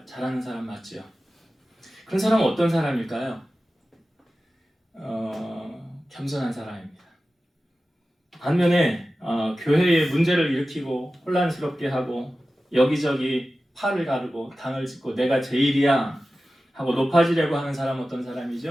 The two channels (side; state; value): both; normal; correlation 0.95